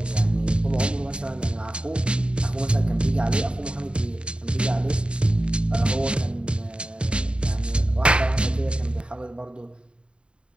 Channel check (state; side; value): late; left; 0.053 ms